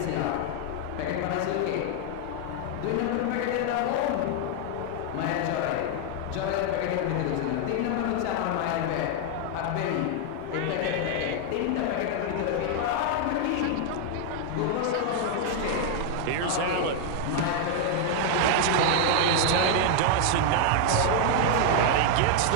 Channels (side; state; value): both; different; correlation 0.00